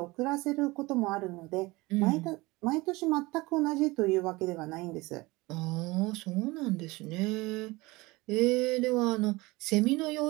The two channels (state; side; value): quieter; left; 22.2 dB